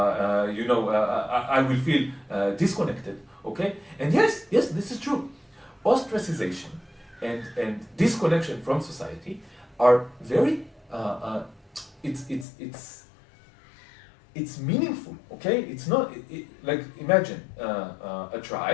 will feel disconnected, okay? And yes, this is true. Ostracization and disconnection from society are very, it's meaningful, okay? It's not, like, imagine a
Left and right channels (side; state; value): right; drops out; at 12.5 s